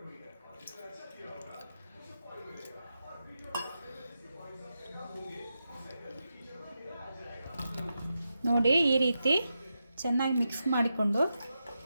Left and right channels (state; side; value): inverted; both; correlation -0.88